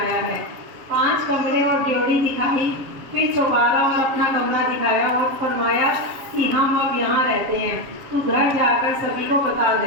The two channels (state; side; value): late; left; 7.3 ms